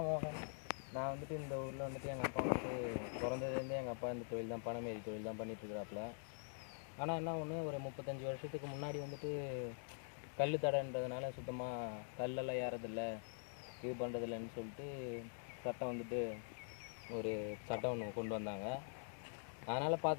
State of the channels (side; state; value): right; silent; digital silence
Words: மோகன். நான் வந்துட்டு இந்த ஊரில் வந்துட்டு எங்கள் அப்பா வந்துட்டு பிறந்ததுலேருந்தே எங்கள் அப்பா இந்த தொழில் தான், பனைமேரி தொழில் தான் பண்ணிகிட்ருக்குறாப்புல. ஆனால் என்ன ஒன்று, ஒரு 35 வருஷத்துக்கு முன்னாடி வந்துட்டு கல் தடைன்றதுனால சுத்தமாக கல்லெல்லாம் ஏறதில்லை, இது பண்ணுறதில்லன்னு சொல்லிட்டு சட்டம் வந்துட்டு ஒரு சட்டம் ஒன்று கொண்டு வந்தாங்க. அதனால்